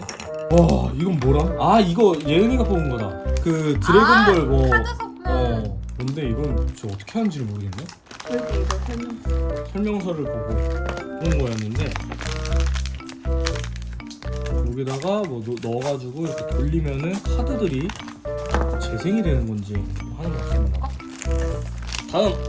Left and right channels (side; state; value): both; identical; correlation 1.00